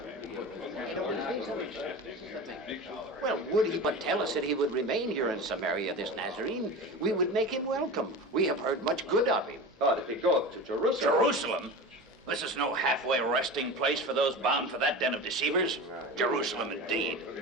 Well, would he but tell us that he would remain here in Samaria, this Nazarene, we would make him welcome. We have heard much good of him. But if he go to Jerusalem... Jerusalem? This is no halfway resting place for those bound for that den of deceivers. Jerusalem,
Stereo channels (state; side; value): normal; both; correlation 0.30